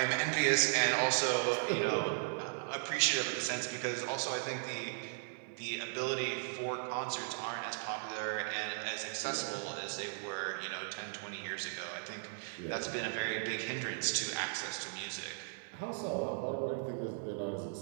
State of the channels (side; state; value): left; silent; 53 dB below the other